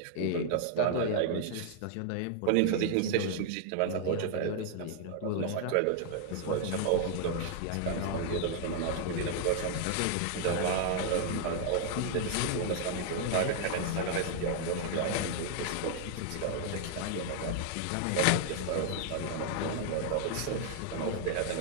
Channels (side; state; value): both; different; correlation -0.01